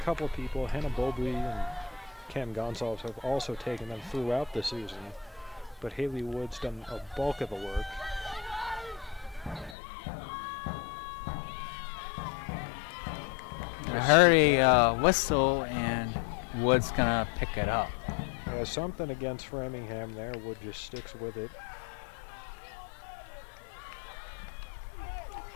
of people, Hannah Bobley and Cam Gonsalves, have also taken them throughout the season, but Haley Wood's done a bulk of the work. I heard a whistle, and Wood's gonna pick it up. Yeah, something against Framingham there. Wood just sticks with it.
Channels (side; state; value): right; drops out; at 9.8 s